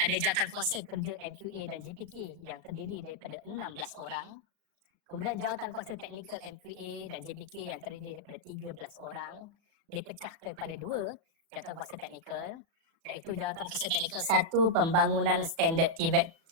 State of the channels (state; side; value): late; left; 36 ms